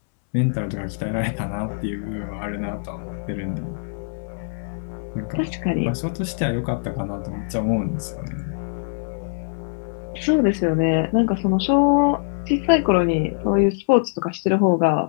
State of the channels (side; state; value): right; silent; 64 dB below the other